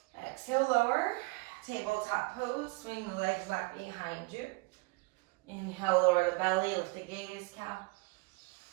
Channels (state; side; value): quieter; left; 25.7 dB